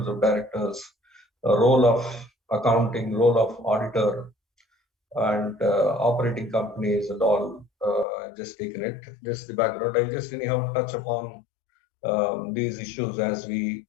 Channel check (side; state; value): right; drops out; at 8.1 s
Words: of directors, role of accounting, role of auditor, and operating companies and all. Just taken it, just the background. I just anyhow touch upon these issues as we